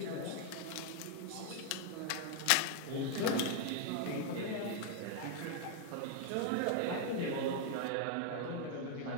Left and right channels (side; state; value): both; different; correlation 0.00